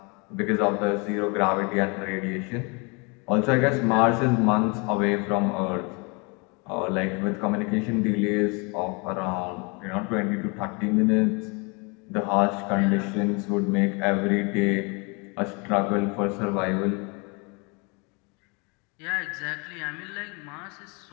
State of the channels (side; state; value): right; quieter; 30.8 dB